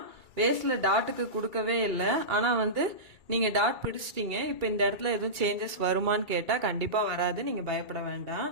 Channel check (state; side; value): late; left; 2.3 ms